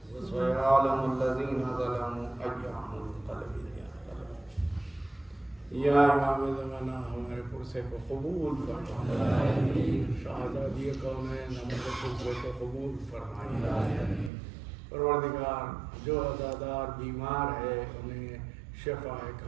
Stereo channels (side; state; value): left; drops out; at 14.3 s